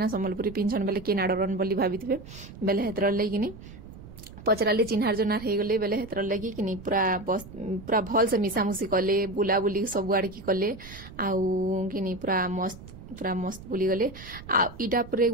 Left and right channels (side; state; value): right; noise; rumble, 16 dB below the sound